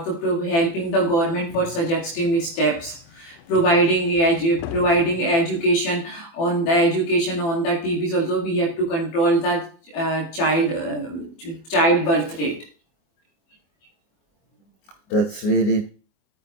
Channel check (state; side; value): late; right; 24 ms